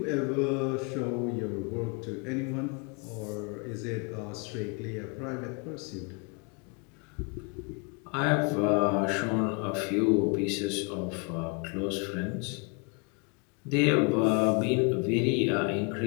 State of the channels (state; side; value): quieter; right; 33.4 dB